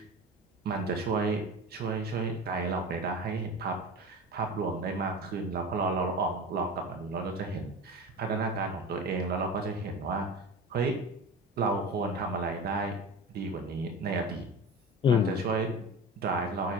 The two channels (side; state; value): both; normal; correlation 0.30